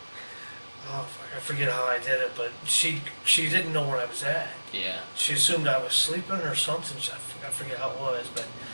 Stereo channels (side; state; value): both; inverted; correlation -1.00